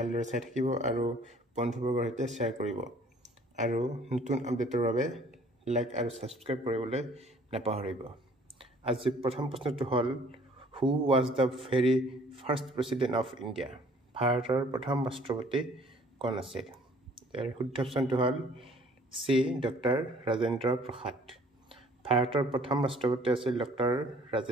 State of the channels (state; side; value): normal; both; correlation 0.56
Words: চাই থাকিব আৰু বন্ধুবৰ্গৰ সৈতে শ্বেয়াৰ কৰিব আৰু নতুন আপডেটৰ বাবে লাইক আৰু সাবস্ক্ৰাইব কৰিবলৈ নাপাহৰিব আজি প্ৰথম প্ৰশ্নটো হ'ল who was the very first president of India ভাৰতৰ প্ৰথম ৰাষ্ট্ৰপতি কোন আছিল শুদ্ধ অপশ্যনটো হ'ল চি ডক্টৰ ৰাজেন্দ্ৰ প্ৰসাদ ভাৰতৰ প্ৰথম ৰাষ্ট্ৰপতি আছিল ডক্টৰ